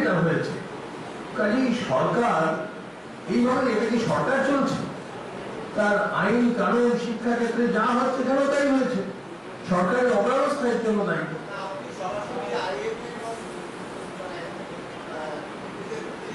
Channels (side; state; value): both; identical; correlation 1.00